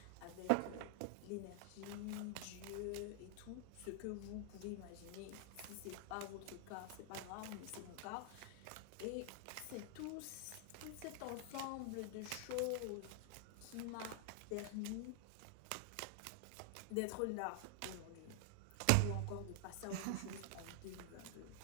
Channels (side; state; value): both; different; correlation 0.00